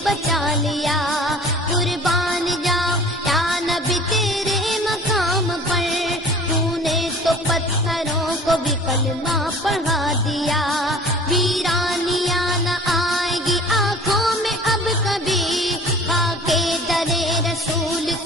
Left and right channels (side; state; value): both; normal; correlation 0.45